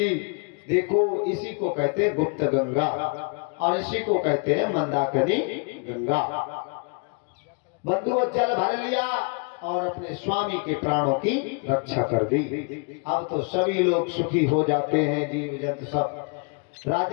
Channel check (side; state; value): right; quieter; 35.4 dB